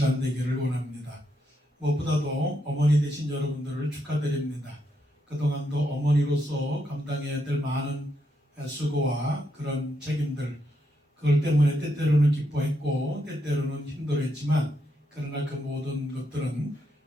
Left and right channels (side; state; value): both; normal; correlation 0.80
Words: 되기를 원합니다. 무엇보다도 어머니 되신 여러분들을 축하드립니다. 그동안도 어머니로서 감당해야 될 많은 수고와 그런 책임들, 그걸 때문에 때때로는 기뻐했고 때때로는 힘들었지만 그러나 그 모든 것들은